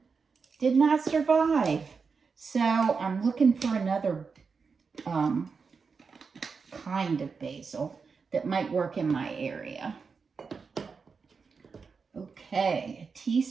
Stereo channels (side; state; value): left; quieter; 5.2 dB